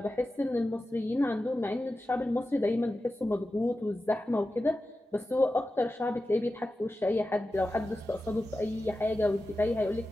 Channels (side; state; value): both; normal; correlation 0.93